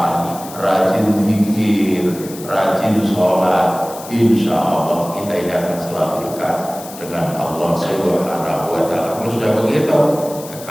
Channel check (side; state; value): left; noise; hiss, 15 dB below the sound